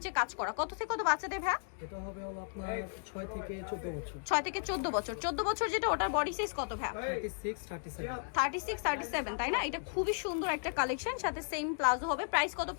কাজ করা। কত থেকে কত বাচ্চাদের ভাই? এটা হবে হলো আপনার 6 থেকে 14 বছর। 6 থেকে 14 বছর। 14 বছর যেটা, ওটার বডি সাইজ কত ভাই? 36 37। 36 37, তাই না? এটা খুবই সুন্দর একটা কালেকশন, সাথে সেম প্লাজো হবে। প্রাইস কত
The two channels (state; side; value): silent; right; digital silence